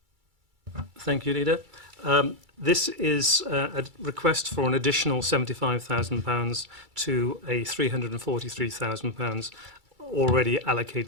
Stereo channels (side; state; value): left; late; 2.3 ms